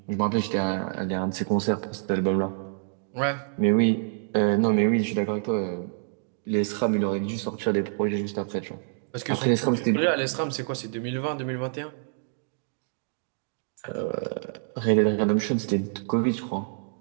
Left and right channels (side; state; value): left; silent; 58 dB below the other